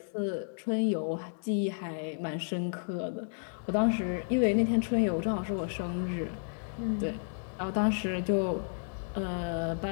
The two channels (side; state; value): right; silent; digital silence